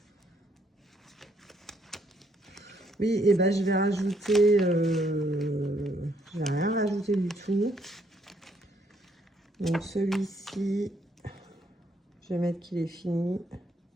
Oui, et ben je vais rajouter. Je vais rien rajouter du tout. Donc celui-ci, je vais mettre qu'il est fini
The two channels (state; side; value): normal; both; correlation 0.70